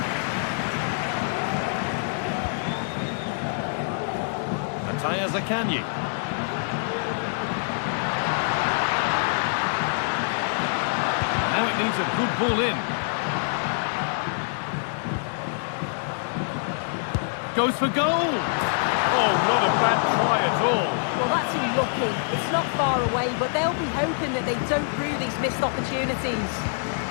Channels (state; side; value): silent; right; digital silence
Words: Matthias Akanji. Now it needs a good ball in. Goes for goal. Oh, not a bad try at all. Well, that's unlucky. It's not far away, but they'll be hoping that they don't rue these missed opportunities.